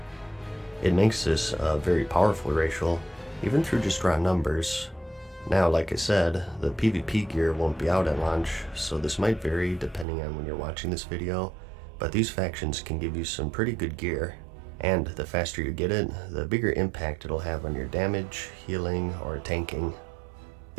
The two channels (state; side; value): drops out; left; at 10.1 s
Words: It makes this a very powerful racial, even through just raw numbers. Now, like I said, the PvP gear won't be out at launch, so this might vary depending on when you're watching this video, but these factions can give you some pretty good gear. And the faster you get it, the bigger impact it'll have on your damage, healing, or tanking.